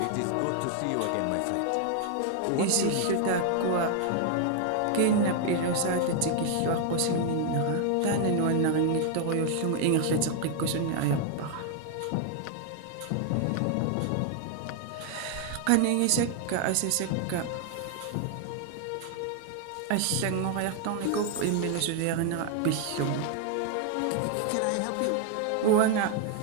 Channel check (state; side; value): different; both; correlation 0.00